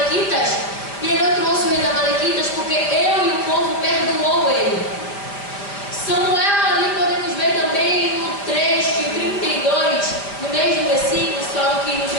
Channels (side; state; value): right; late; 4.9 ms